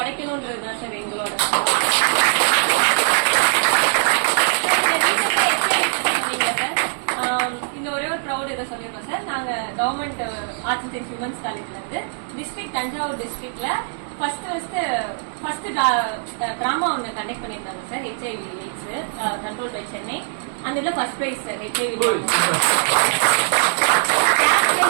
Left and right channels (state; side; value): silent; left; 65 dB below the other